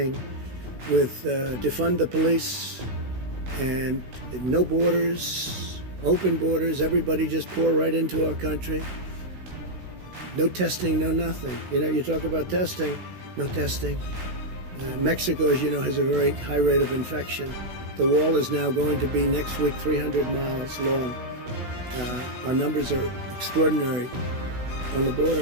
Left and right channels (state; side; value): late; left; 16 ms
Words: with defund the police and no borders, open borders, everybody just pour right into our country. No testing, no nothing. You know, you talk about testing, no testing. Mexico, as you know, has a very high rate of infection. The wall is now going to be next week 300 miles long. Our numbers are extraordinary on the